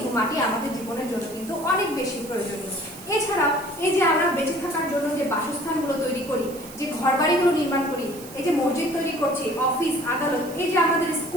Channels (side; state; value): right; noise; hiss, 17 dB below the sound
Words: মাটি আমাদের জীবনের জন্য কিন্তু অনেক বেশি প্রয়োজনীয়। এছাড়াও এই যে আমরা বেঁচে থাকার জন্য যে বাসস্থানগুলো তৈরি করি, যে ঘরবাড়িগুলো নির্মাণ করি, এই যে মসজিদ তৈরি করছি, অফিস আদালত, এই যে আমাদের